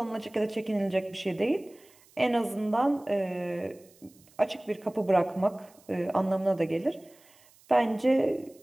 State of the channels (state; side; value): noise; right; hiss, 28 dB below the sound